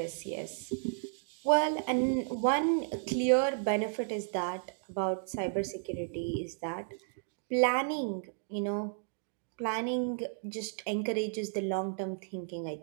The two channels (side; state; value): left; silent; digital silence